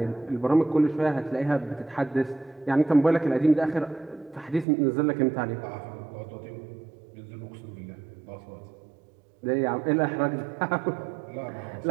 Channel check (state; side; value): drops out; left; at 4.7 s